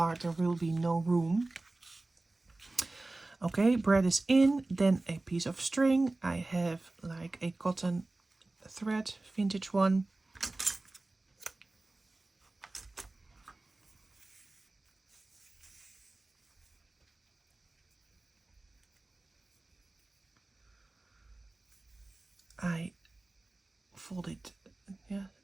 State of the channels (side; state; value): left; quieter; 3.0 dB